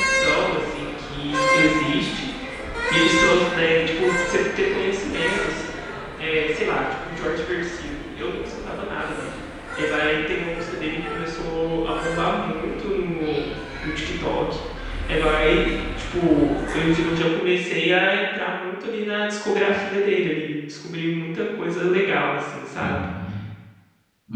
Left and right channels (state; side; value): identical; both; correlation 1.00